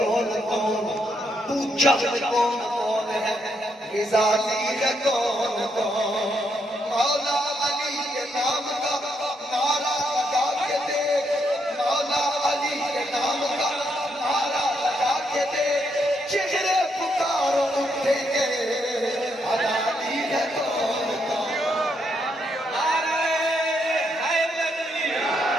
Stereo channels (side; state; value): both; normal; correlation 0.77